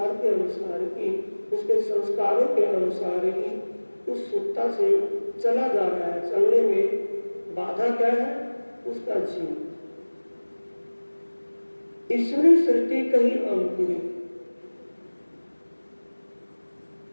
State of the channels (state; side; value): inverted; both; correlation -1.00